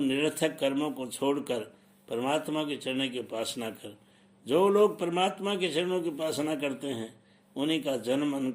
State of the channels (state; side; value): identical; both; correlation 1.00